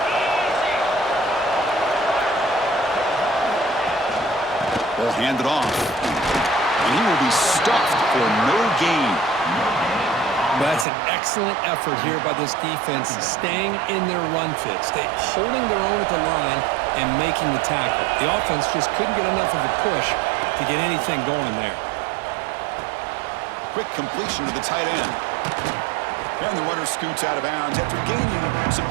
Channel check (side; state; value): left; drops out; at 10.9 s